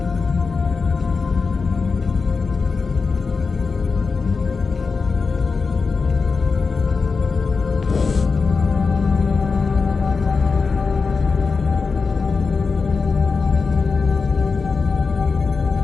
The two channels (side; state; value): right; quieter; 4.7 dB